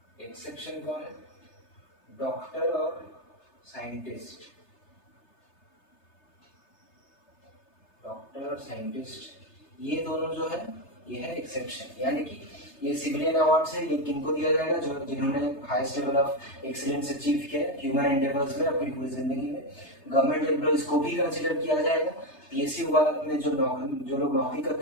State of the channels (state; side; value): late; right; 3.3 ms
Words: एक्सेप्शन कौन है? डॉक्टर और साइंटिस्ट, डॉक्टर और साइंटिस्ट, ये दोनों जो है ये है एक्सेप्शन। यानी कि ये सिविलियन अवार्ड्स है, ये किनको दिया जाएगा? जो जिन्होंने highest level of excellence achieve किया है ह्यूमन एंडेवर्स में अपनी पूरी जिंदगी में। गवर्नमेंट एम्प्लॉइज को भी कंसिडर किया जाएगा, पीएसयू में जो लोग नौकरी